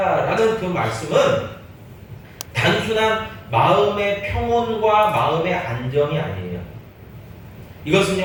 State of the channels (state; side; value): identical; both; correlation 1.00